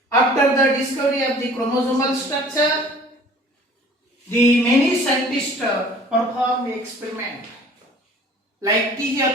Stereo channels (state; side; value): normal; both; correlation 0.50